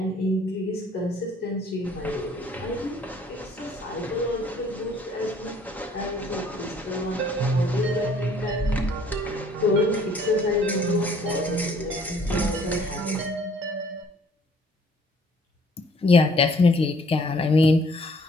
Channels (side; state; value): both; normal; correlation 0.59